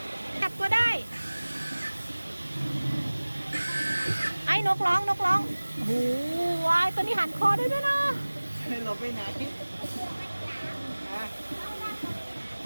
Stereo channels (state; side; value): inverted; both; correlation -1.00